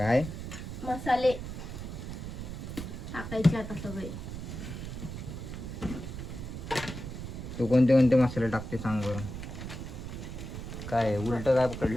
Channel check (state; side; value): noise; right; rumble, 7 dB below the sound